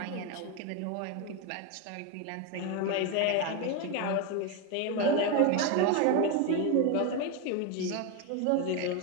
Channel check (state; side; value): different; both; correlation 0.02